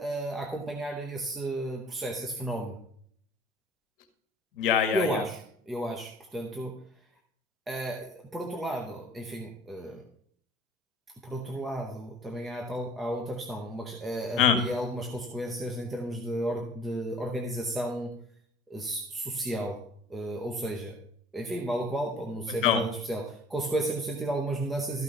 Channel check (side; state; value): both; normal; correlation 0.50